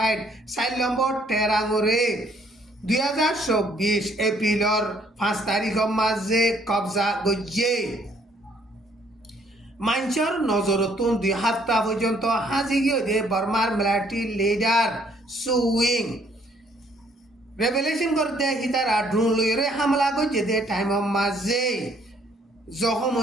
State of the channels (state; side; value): normal; both; correlation 0.64